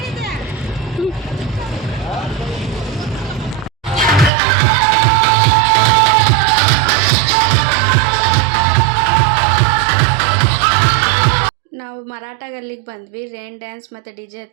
ನಾವು ಮರಾಠ ಗಲ್ಲಿಗೆ ಬಂದ್ವಿ. ರೈನ್ ಡ್ಯಾನ್ಸ್ ಮತ್ತು DJ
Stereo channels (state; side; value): drops out; left; at 4.3 s